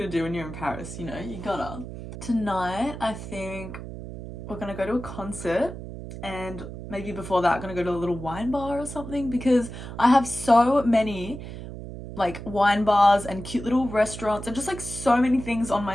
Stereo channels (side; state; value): right; noise; hum, 10 dB below the sound